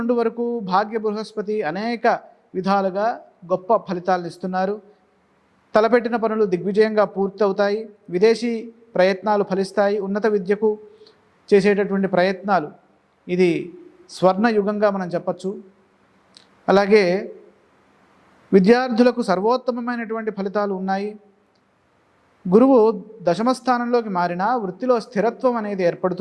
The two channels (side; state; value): both; identical; correlation 1.00